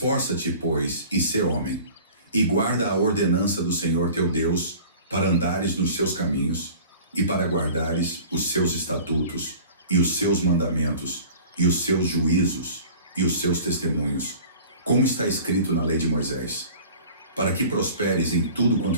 pois, e sê homem, e guarda a ordenança do Senhor teu Deus, para andares nos seus caminhos, e para guardares os seus estatutos, e os seus mandamentos, e os seus juízos, e os seus testemunhos, como está escrito na lei de Moisés, para que prosperes em tudo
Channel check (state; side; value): inverted; both; correlation -0.44